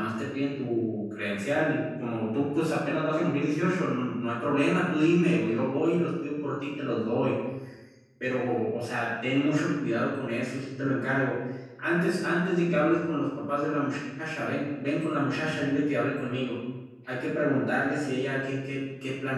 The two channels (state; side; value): identical; both; correlation 1.00